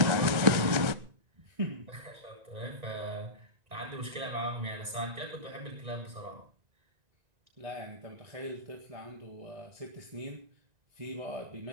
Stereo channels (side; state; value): left; late; 1.9 ms